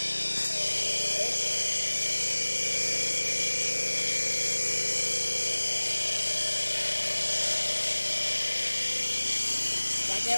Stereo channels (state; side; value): inverted; both; correlation -1.00